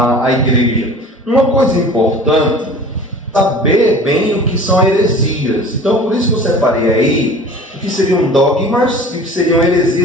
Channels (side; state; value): both; normal; correlation 0.41